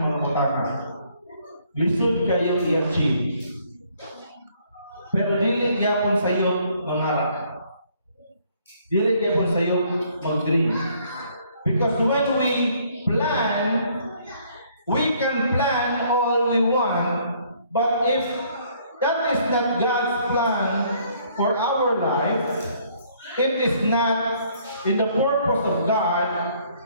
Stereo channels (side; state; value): both; inverted; correlation -0.64